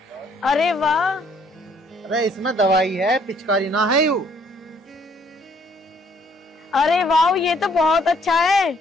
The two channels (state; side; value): normal; both; correlation 0.64